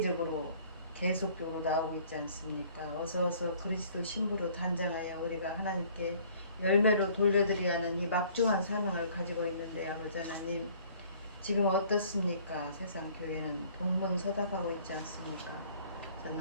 계속적으로 나오고 있지 않습니까? 어서 그리스도 신부로 단장하여 우리가 하나님께 열매로 돌려드려야 하는 이 막중한 사명을 가지고 있는데 아버지 하나님 지금 어떻습니까? 세상 교회는 동문서답하고 있지 않습니까?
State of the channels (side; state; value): both; inverted; correlation -0.56